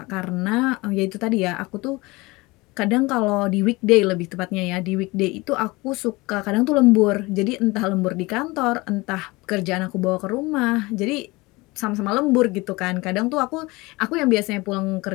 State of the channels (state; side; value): quieter; right; 22.9 dB